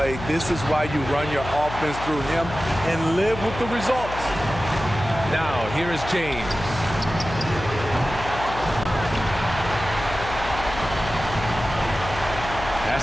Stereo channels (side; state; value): left; noise; hum, 10 dB below the sound